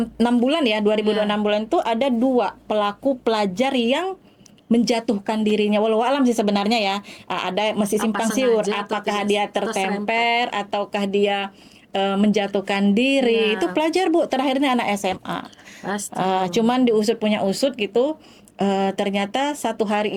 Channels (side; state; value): both; identical; correlation 1.00